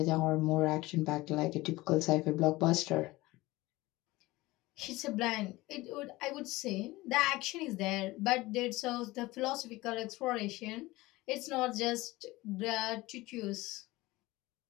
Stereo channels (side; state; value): right; quieter; 19.8 dB